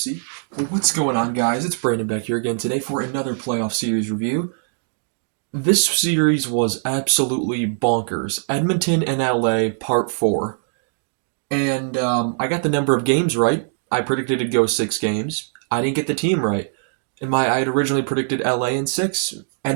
Well, what's going on, guys? It's Brandon back here again today for another playoff series review. This series was absolutely bonkers. Edmonton and LA, part 4. And I got the number of games right. I predicted it'd go 6 games. I didn't get the team right. I had originally predicted LA in 6.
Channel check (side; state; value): left; silent; digital silence